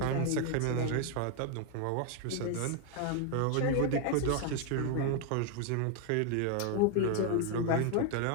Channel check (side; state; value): both; different; correlation 0.01